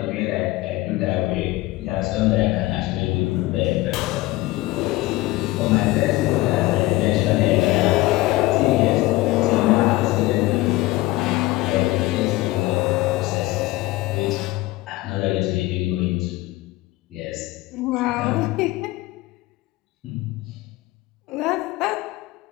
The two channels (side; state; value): right; quieter; 18.9 dB